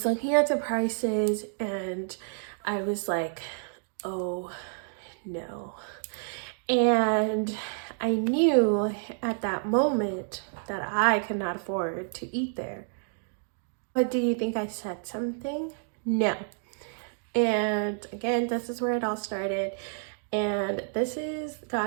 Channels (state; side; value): silent; left; digital silence